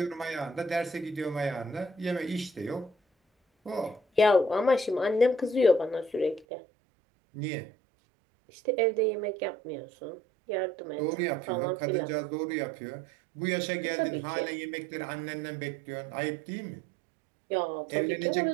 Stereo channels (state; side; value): drops out; left; at 6.5 s